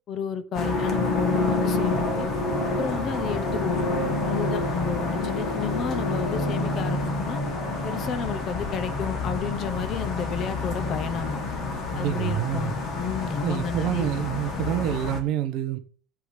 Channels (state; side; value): normal; both; correlation 0.36